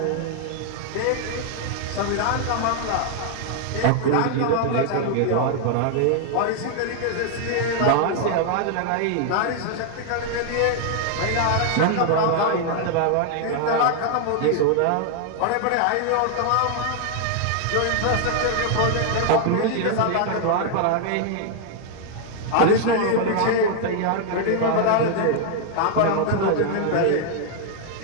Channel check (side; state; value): both; different; correlation 0.00